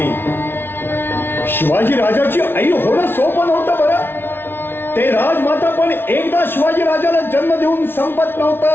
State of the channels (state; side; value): late; right; 0.11 ms